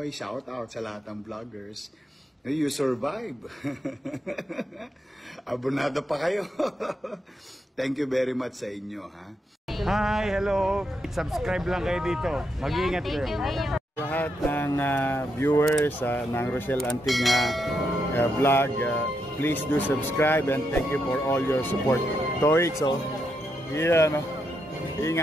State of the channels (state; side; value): normal; both; correlation 0.81